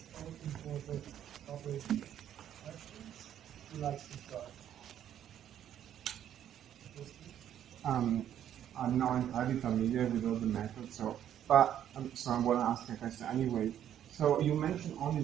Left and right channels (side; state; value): left; quieter; 10.5 dB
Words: I'm not entirely familiar with all the methods, so I want to ask a question anyway. So you mentioned only